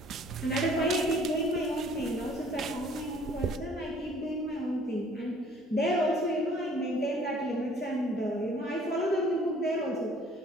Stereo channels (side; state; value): both; normal; correlation 0.56